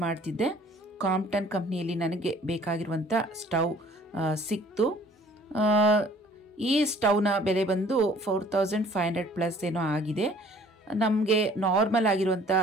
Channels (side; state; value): both; normal; correlation 0.54